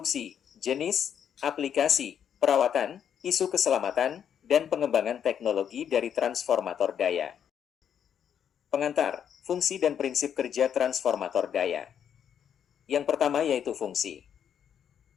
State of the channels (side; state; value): right; quieter; 8.6 dB